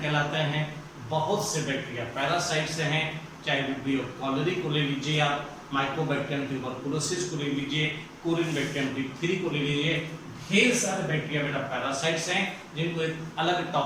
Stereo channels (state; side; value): identical; both; correlation 1.00